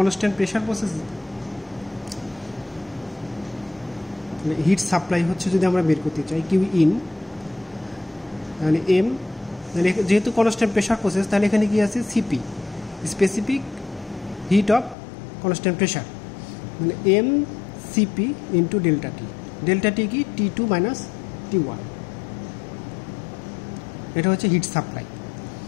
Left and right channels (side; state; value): right; drops out; at 15.0 s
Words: pressure process heat supply হচ্ছে যদি আমরা বের করতে চাই কিউ ইন, তাহলে এম, তাহলে যেহেতু কনস্ট্যান্ট প্রেশার প্রসেস তাহলে এখানে কি আছে? CP, specific heat of constant pressure, মানে এম সিপি ইন্টু ডেল্টা টি। ডেল্টা টি কি? T2 minus T1। এটা হচ্ছে হিট সাপ্লাই।